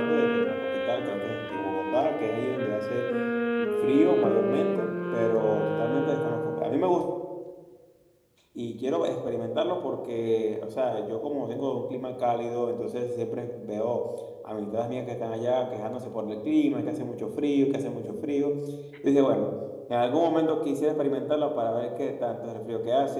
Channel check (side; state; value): both; identical; correlation 1.00